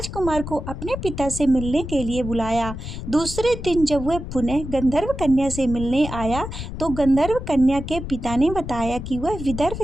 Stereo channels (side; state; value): left; noise; rumble, 8 dB below the sound